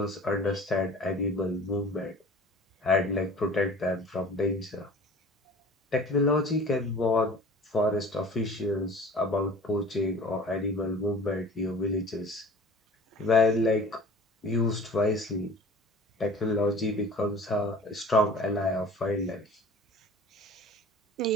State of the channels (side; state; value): both; normal; correlation 0.44